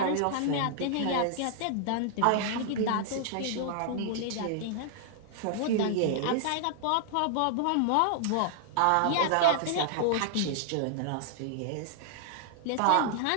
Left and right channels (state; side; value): different; both; correlation -0.01